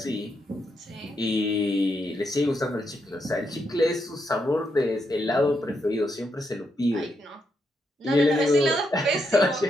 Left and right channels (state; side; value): normal; both; correlation 0.80